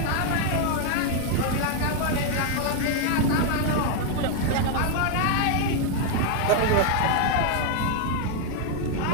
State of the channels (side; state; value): both; different; correlation 0.01